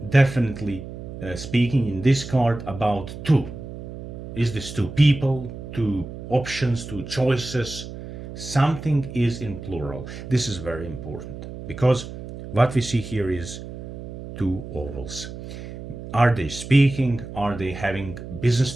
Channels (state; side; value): noise; right; hum, 11 dB below the sound